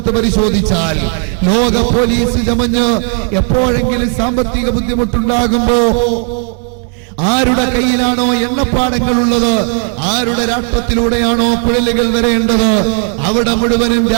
പരിശോധിച്ചാൽ ലോക പോലീസ് ചമഞ്ഞ് എപ്പോഴെങ്കിലും സാമ്പത്തിക ബുദ്ധിമുട്ടുണ്ടാകുമ്പോ ആരുടെ കയ്യിലാണോ എണ്ണപ്പാടങ്ങളുള്ളത്, ആരുടെ രാഷ്ട്രത്തിലൂടെയാണോ കുഴലുകൾ വരേണ്ടത്, അവിടെ മുഴുവനും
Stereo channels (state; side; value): quieter; left; 37.9 dB